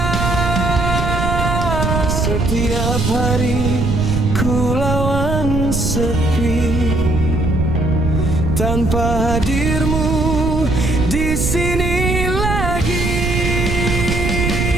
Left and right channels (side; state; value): right; noise; rumble, 1 dB below the sound